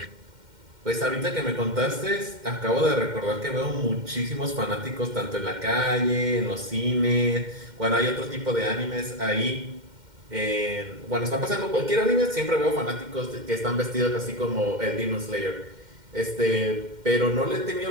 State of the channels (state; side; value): late; left; 2.1 ms